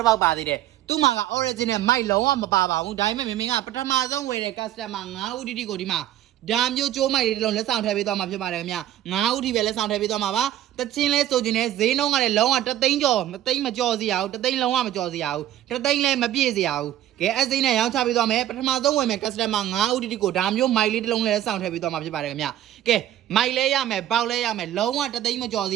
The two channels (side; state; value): left; quieter; 12.4 dB